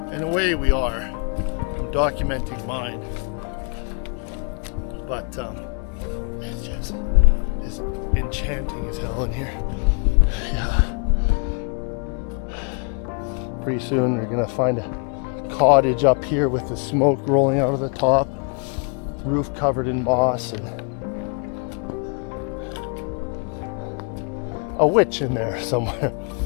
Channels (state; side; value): quieter; right; 38.3 dB